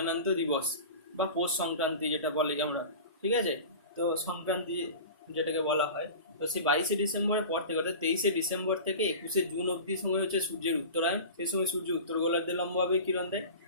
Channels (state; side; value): inverted; both; correlation -0.34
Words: দিবস। বা পৌষ সংক্রান্তি যেটা বলে আমরা, ঠিক আছে। তো সংক্রান্তি যেটাকে বলা হয়, তো সেই 22শে ডিসেম্বরের পর থেকে অর্থাৎ 23শে ডিসেম্বর থেকে 21শে জুন অবধি সময় হচ্ছে সূর্যের উত্তরায়ণ। সেই সময় সূর্য উত্তর গোলার্ধে লম্বভাবে কিরণ দেয়,